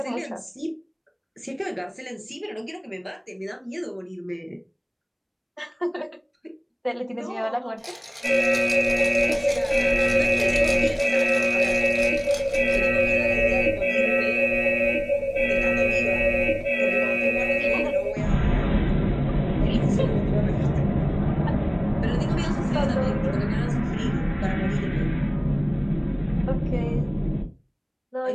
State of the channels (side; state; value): both; identical; correlation 1.00